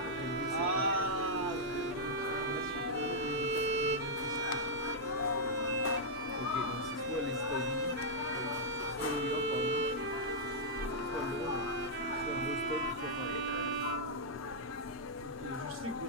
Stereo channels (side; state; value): both; normal; correlation -0.07